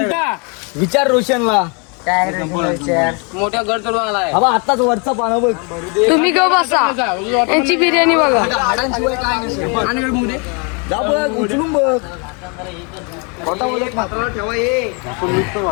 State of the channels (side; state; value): right; quieter; 34.0 dB